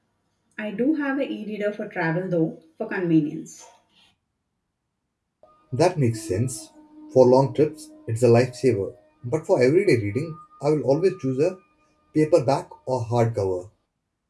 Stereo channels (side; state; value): both; identical; correlation 1.00